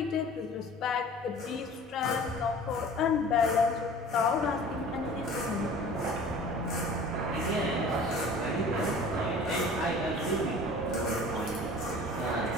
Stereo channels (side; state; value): both; normal; correlation 0.44